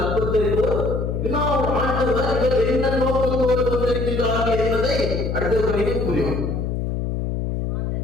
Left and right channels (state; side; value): noise; left; hum, 1 dB below the sound